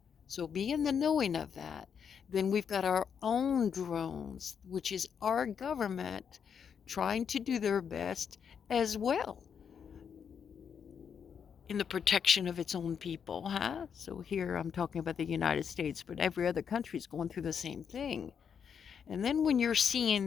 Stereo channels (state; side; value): quieter; right; 7.3 dB